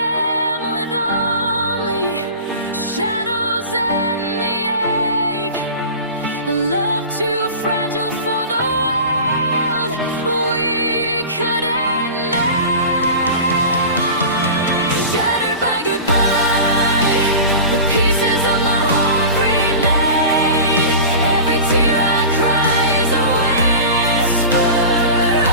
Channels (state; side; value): inverted; both; correlation -0.33